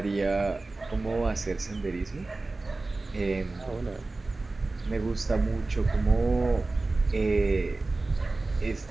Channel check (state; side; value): quieter; left; 3.3 dB